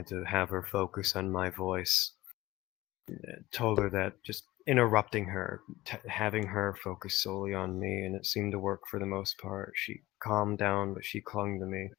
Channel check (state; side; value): quieter; right; 17.8 dB